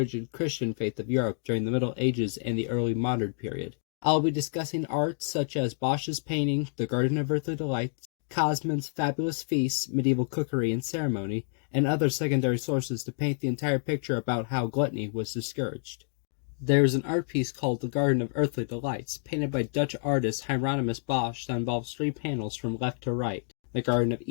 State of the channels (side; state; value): right; silent; digital silence